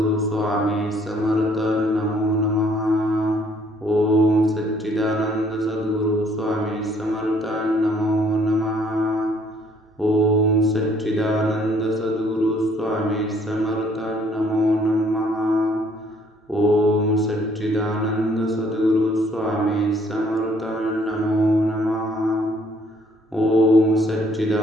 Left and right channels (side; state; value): both; normal; correlation 0.63